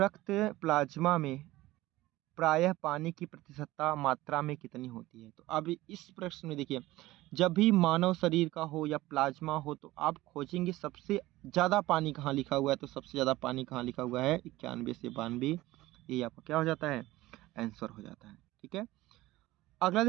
प्लाज्मा में प्रायः पानी की प्रतिशतता मात्रा में कितनी होती है? तो अब इस प्रश्न में देखिए, जब भी मानव शरीर का हो या प्लाज्मा हो तो आप खोजेंगे सबसे ज़्यादा पानी कहाँ लिखा हुआ है। तो सबसे ज़्यादा पानी कहाँ लिखा हुआ है? 91 से 92। ये आपका क्या हो जाता है? आंसर हो जाता है, ठीक है। अगला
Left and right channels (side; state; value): left; quieter; 17.7 dB